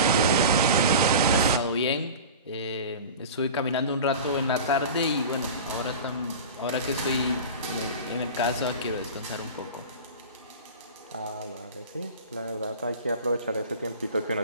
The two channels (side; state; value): both; inverted; correlation -0.33